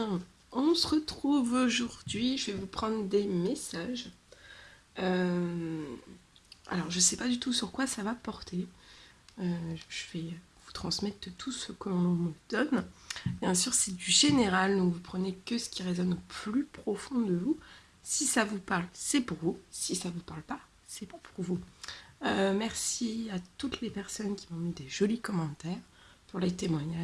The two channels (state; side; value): identical; both; correlation 1.00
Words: On se retrouve aujourd'hui. Je vais vous prendre des messages. Euh, alors, je ne sais pas du tout sur quoi ça va porter. Je vais vous transmettre tout ce que l'on me donne. Bien sûr, c'est du général, donc vous prenez que ce qui résonne au plus profond de vous. Si ça vous parle, c'est pour vous. Si ça ne vous parle pas, c'est pas pour vous. Merci à toutes les personnes qui m'ont mis des jolis commentaires, pour les